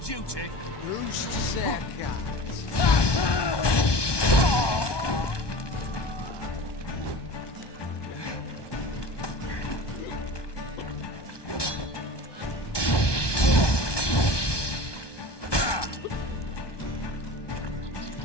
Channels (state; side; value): late; right; 1.2 ms